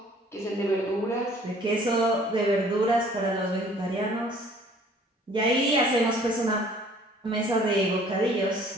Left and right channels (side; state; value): both; normal; correlation 0.55